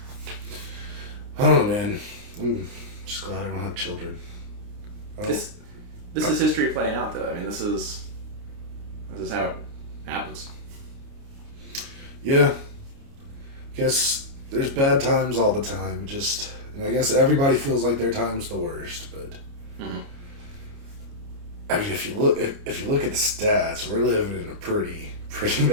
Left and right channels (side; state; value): left; late; 29 ms